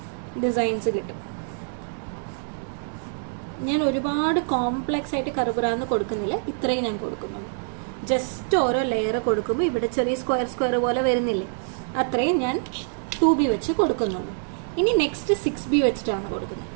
ഡിസൈൻസ് കിട്ടും. ഞാൻ ഒരുപാട് കോംപ്ലക്സ് ആയിട്ട് കറുപുറാന്ന് കൊടുക്കുന്നില്ല, ഇത്രയും ഞാൻ കൊടുക്കുന്നുള്ളൂ. ജസ്റ്റ് ഓരോ ലെയർ കൊടുക്കുമ്പോൾ ഇവിടെ ചെറിയ സ്ക്വയർ പോലെ വരുന്നില്ലേ, അത്രയും ഞാൻ 2B വെച്ച് കൊടുക്കുന്നുള്ളൂ. ഇനി നെക്സ്റ്റ് 6B വെച്ചിട്ടാണ് കൊടുക്കുന്നത്.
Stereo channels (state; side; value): silent; left; digital silence